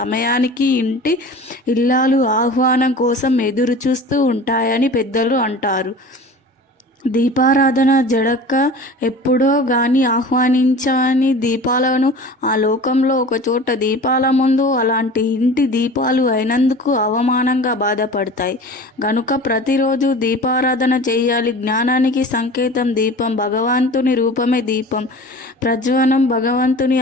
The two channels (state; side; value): normal; both; correlation 0.39